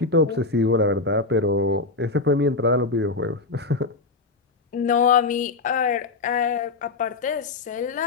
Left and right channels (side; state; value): right; quieter; 3.7 dB